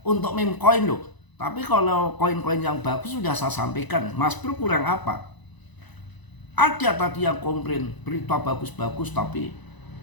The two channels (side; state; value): right; late; 1.0 ms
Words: untuk meme coin loh. Tapi kalau koin-koin yang bagus sudah saya sampaikan. Mas Bro kurang apa? Ada tadi yang komplain berita bagus-bagus tapi